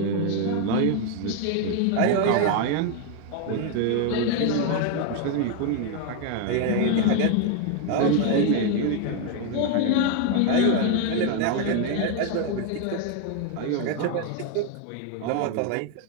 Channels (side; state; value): both; different; correlation 0.01